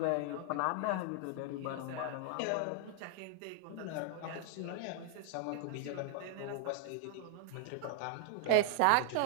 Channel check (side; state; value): both; different; correlation 0.00